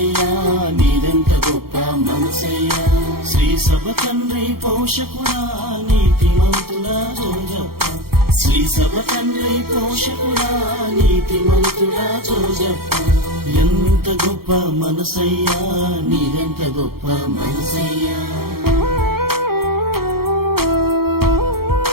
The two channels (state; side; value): late; left; 0.94 ms